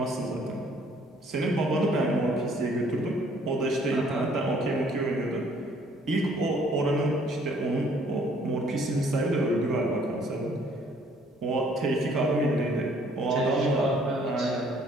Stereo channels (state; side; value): normal; both; correlation 0.61